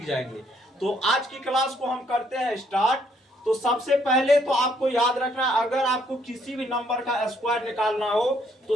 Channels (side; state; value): both; normal; correlation 0.69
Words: जाएंगे। तो आज की क्लास को हम करते हैं स्टार्ट। तो सबसे पहले तो आपको याद रखना, अगर आपको किसी भी नंबर का स्क्वायर निकालना हो तो